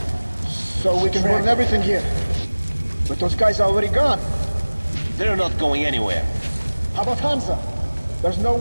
So we can burn everything here. But those guys are already gone. They're not going anywhere. How about Hansa? There's no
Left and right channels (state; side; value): inverted; both; correlation -1.00